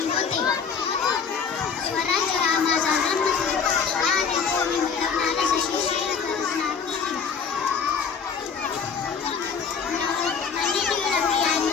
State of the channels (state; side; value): quieter; right; 6.1 dB